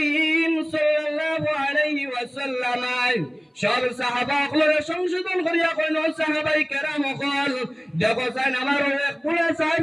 সাল্লাল্লাহু আলাইহি ওয়াসাল্লাম সব সাহাবাগুলোর সংশোধন করিয়া কইল, সাহাবাই কেরাম হল দেখো চাই আমার এক বুড়া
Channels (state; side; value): identical; both; correlation 1.00